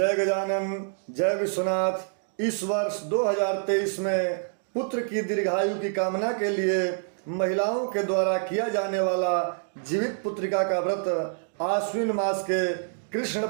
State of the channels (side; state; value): left; silent; digital silence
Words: गजानन, जय विश्वनाथ। इस वर्ष 2023 में पुत्र की दीर्घायु की कामना के लिए महिलाओं के द्वारा किया जाने वाला जीवित पुत्रिका का व्रत आश्विन मास के कृष्ण